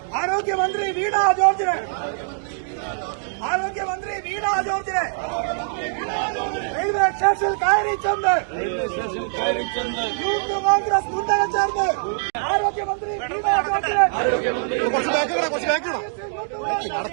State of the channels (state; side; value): silent; left; digital silence